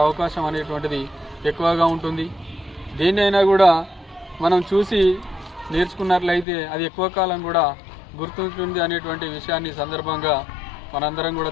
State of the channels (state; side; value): drops out; right; at 6.5 s